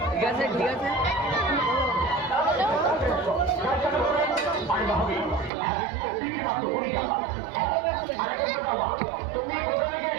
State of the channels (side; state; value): left; drops out; at 5.5 s